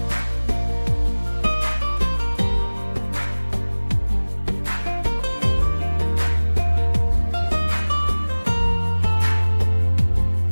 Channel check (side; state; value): both; inverted; correlation -1.00